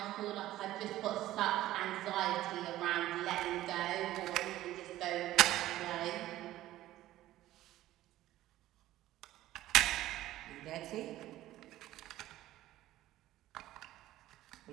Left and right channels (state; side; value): quieter; left; 14.9 dB